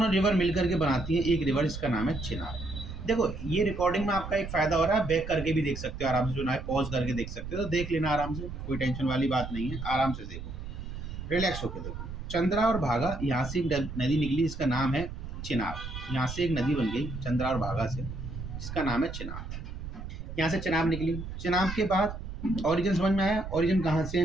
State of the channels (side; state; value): right; noise; rumble, 8 dB below the sound